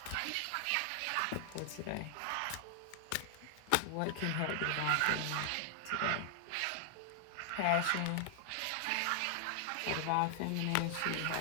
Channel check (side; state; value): both; different; correlation 0.00